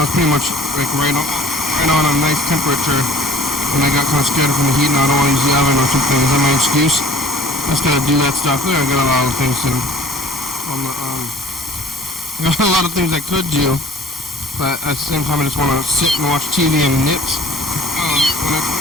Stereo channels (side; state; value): both; normal; correlation 0.50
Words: pretty much like right on a nice temperature. And I got kind of scared from the heat, and I don't want to use the oven or something. Is that my excuse? I just gotta do that stuff. I got a lot of things I got a lot of things I could do, but at the same time, I just want to sit and watch TV and knit. When I